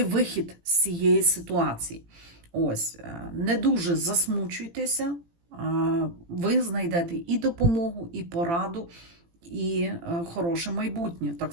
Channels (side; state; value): left; late; 18 ms